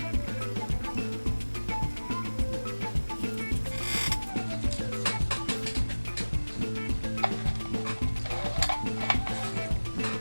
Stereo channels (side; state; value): both; inverted; correlation -1.00